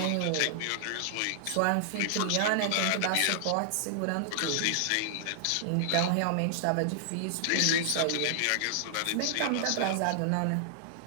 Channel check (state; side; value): different; both; correlation -0.01